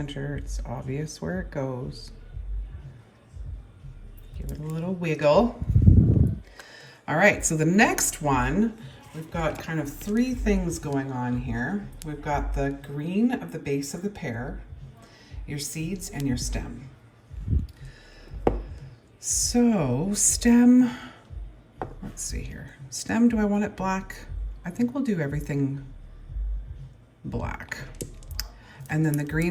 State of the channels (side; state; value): both; identical; correlation 1.00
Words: It's obvious where it goes. Give it a little wiggle. All right, so the next one, we've got kind of three things going on here. We've got the green of the base of the pear, your seeds, and your stem. So stem, let's see here. Stem, do I want it black? I think we'll do everything black. And then the